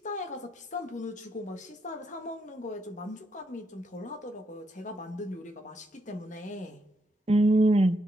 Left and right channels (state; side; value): normal; both; correlation 0.78